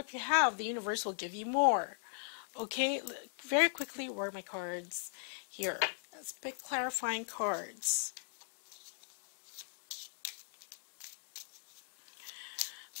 you have, the universe will give you more. Okay? Very quickly, where are my cards? Here. Let's pick clarifying cards.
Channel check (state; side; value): silent; right; digital silence